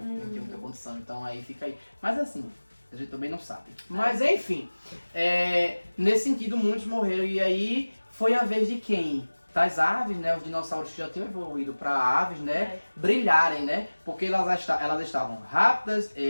tinha muita condição, então aí fica aí. Mas assim, a gente também não sabe. Mas enfim, nesse sentido muitos morreram e aí foi a vez de quem? Das aves, né? Os dinossauros que já tinham evoluído para aves, né? Brilharem, né? Porque elas estavam rápidas,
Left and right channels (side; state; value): both; inverted; correlation -1.00